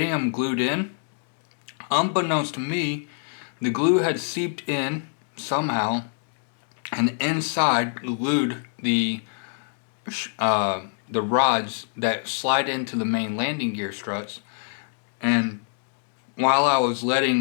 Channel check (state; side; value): silent; right; 61 dB below the other